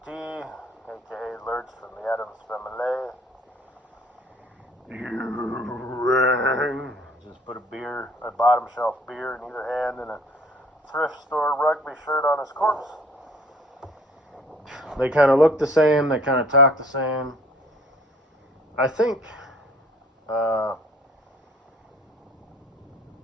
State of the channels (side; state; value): both; normal; correlation 0.54